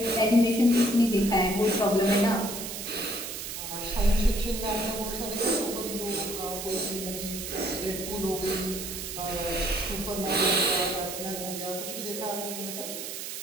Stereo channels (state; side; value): noise; right; hiss, 7 dB below the sound